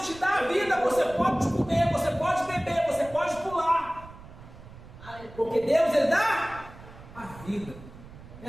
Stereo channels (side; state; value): right; noise; rumble, 18 dB below the sound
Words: te dá a vida, você pode comer, você pode beber, você pode pular, porque Deus, Ele dá a vida.